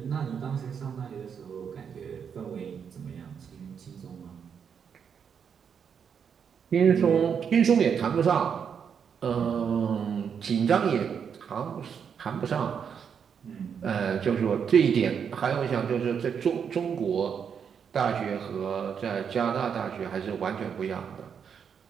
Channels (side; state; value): left; quieter; 7.2 dB